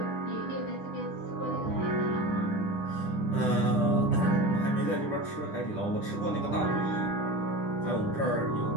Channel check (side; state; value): right; late; 9.9 ms